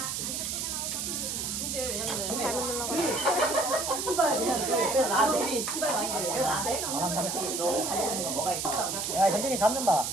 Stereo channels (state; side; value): noise; right; hiss, 2 dB below the sound